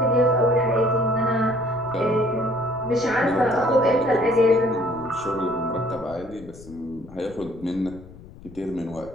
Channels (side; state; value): left; noise; rumble, 19 dB below the sound